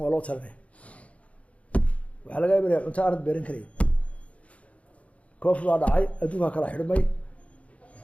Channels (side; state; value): right; late; 0.065 ms